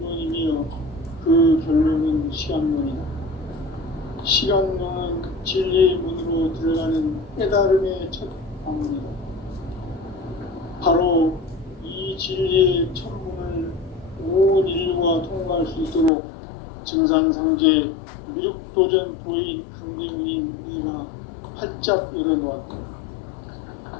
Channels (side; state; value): right; drops out; at 16.1 s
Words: 그 결론은 시간론이다. 시간론은 진리의 문으로 들어가는 깨달음의 첫 방문이다. 바로 이 진리의 첫 문을 온 인류가 통과할 수 있도록 증산상제 미륵도전 도인 강대문인 이가 활짝 열어놓았다.